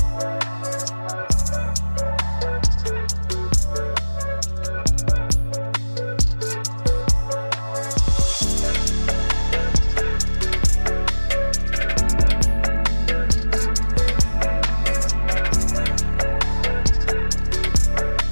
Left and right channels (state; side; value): inverted; both; correlation -1.00